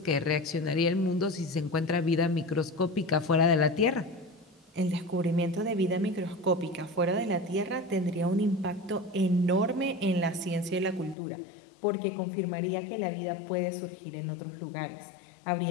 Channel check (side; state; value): right; drops out; at 11.2 s